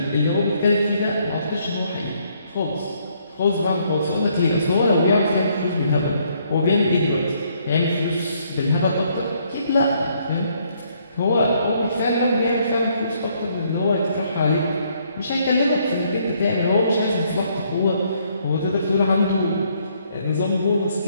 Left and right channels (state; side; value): inverted; both; correlation -0.69